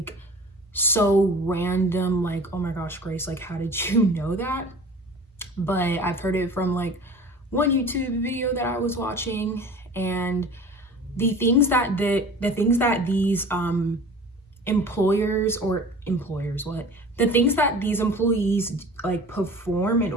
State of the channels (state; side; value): normal; both; correlation 0.41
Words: so random, like, oh my gosh, Grace, like, how did you know that? But I've heard it from like one YouTube video that I was watching, and the things that the things that these employers, what the things that these employees like perform in